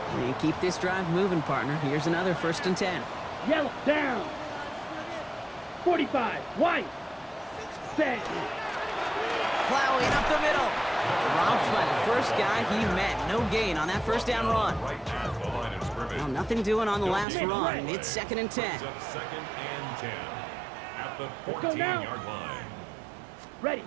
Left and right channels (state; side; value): drops out; left; at 17.2 s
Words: And keep this drive moving, partner. Here's another 1st and 10. Yellow, down. 45, white. Set. Plowing up the middle. Dropped by the first guy he met. No gain on that 1st down run. Right at the line of scrimmage. Well, nothing doing on the last run. It's 2nd and 10. Brings up 2nd and 10 at the 14-yard line. Ready.